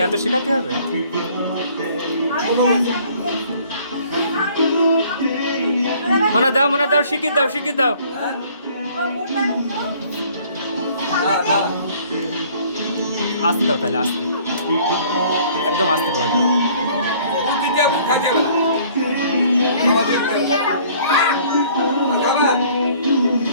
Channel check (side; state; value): both; inverted; correlation -0.56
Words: এত শেখাতে হবে? মনে দাও, মনে দাও, শিখিয়ে দাও, শিখিয়ে দাও। আসতে দাও তাহলে, আসতে, একদম আসতে করে দাও।